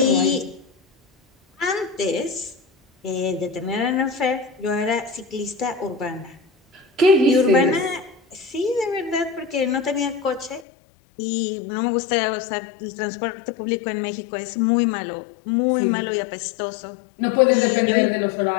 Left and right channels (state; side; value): drops out; right; at 10.7 s